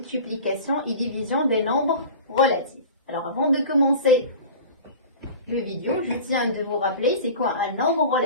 et division des nombres relatifs. Alors avant de commencer le vidéo, je tiens de vous rappeler c'est quoi un nombre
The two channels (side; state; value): both; inverted; correlation -0.36